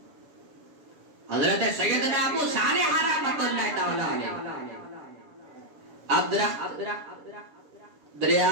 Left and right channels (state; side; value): late; left; 7.1 ms